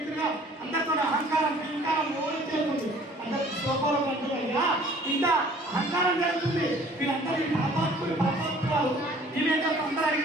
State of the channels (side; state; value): both; normal; correlation 0.53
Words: ఇంటిగా అందరితో అహంకారం అహంకారం ఓడి చేస్తుంది అందరికి శోభాలు అంటున్నాయా ఇంత అహంకారం జరుగుతుంది వీళ్ళందరూ పాపాత్ములు వీళ్ళేంటో అందరూ